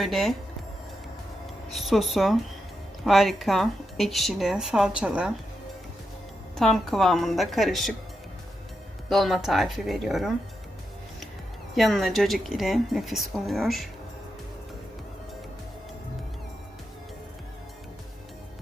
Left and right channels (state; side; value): normal; both; correlation 0.86